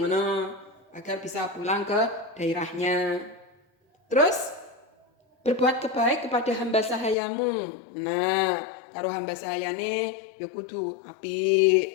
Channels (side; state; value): right; drops out; at 7.2 s